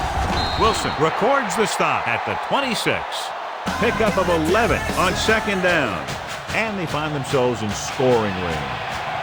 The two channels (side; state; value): both; identical; correlation 1.00